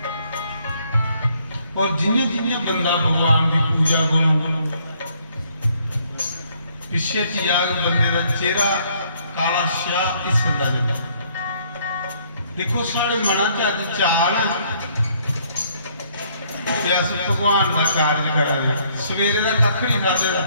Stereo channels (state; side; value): inverted; both; correlation -0.66